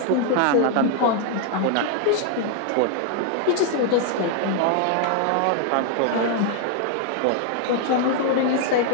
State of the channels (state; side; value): different; both; correlation 0.00